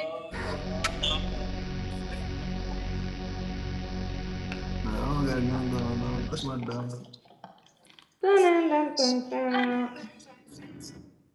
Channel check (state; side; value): identical; both; correlation 1.00